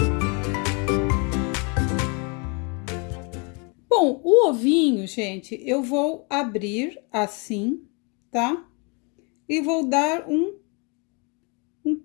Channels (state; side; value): quieter; right; 32.8 dB